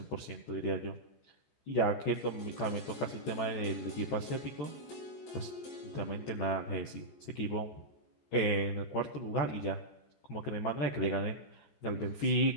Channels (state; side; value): late; right; 14 ms